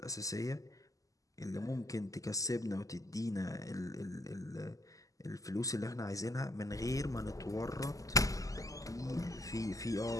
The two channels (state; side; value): late; right; 0.17 ms